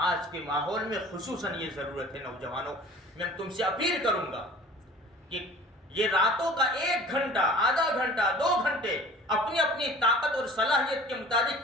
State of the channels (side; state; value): both; normal; correlation 0.44